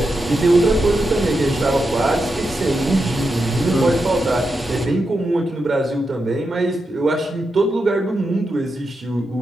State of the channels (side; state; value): both; normal; correlation 0.87